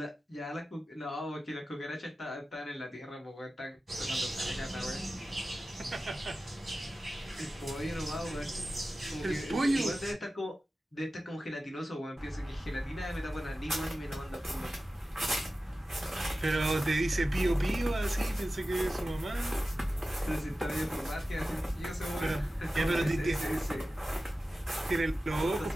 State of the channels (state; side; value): normal; both; correlation 0.95